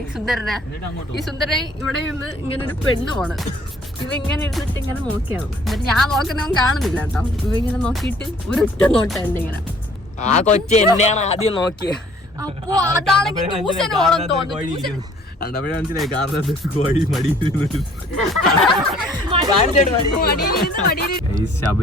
സുന്ദരനെ. ഈ സുന്ദരനെ ഇവിടെ നിന്ന് ഇങ്ങനെ ഒരു പെണ്ണ് പോണ്. ഇവ ഇങ്ങനെ ഇരുന്നിട്ട് ഇങ്ങനെ നോക്കിയാണ്. എന്നിട്ട് ഞാൻ നോക്കുന്നവൻ കാണുന്നില്ല കേട്ടോ. ഇവ ഇങ്ങനെ നോക്കിയിട്ട് ഒരൊറ്റ നോട്ടുണ്ട് ഇങ്ങനെ. ആ കൊച്ചു എന്നെയാണ് ആദ്യം നോക്കിയത്. അപ്പൊ അതാണെങ്കിൽ ട്യൂഷൻ ഓണം തോന്നുന്നു.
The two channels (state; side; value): normal; both; correlation 0.57